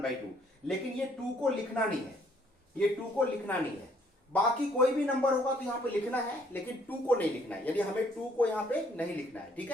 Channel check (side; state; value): both; normal; correlation 0.64